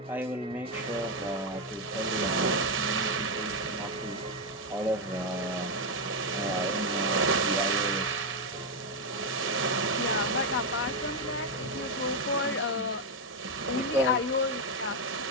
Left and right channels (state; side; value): normal; both; correlation 0.05